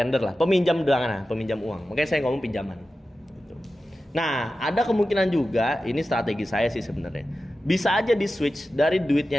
lah. Peminjam uang. Makanya saya ngomong pinjaman. Gitu. Nah, ada kemungkinan juga ini strategi saya sih sebenarnya. Bisa aja di switch dari duit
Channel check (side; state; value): both; normal; correlation 0.93